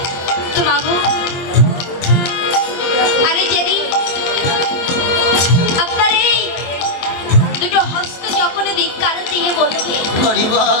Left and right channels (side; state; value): right; late; 23 ms